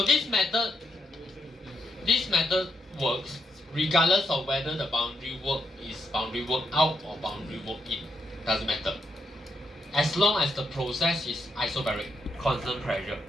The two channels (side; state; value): both; normal; correlation 0.80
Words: this method works regardless of whether the boundary work is boundary work out or boundary work in. Doesn't matter. as long as the process is isobaric, constant pressure.